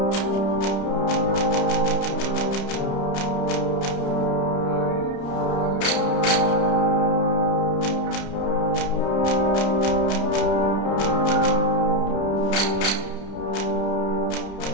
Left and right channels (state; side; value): late; right; 30 ms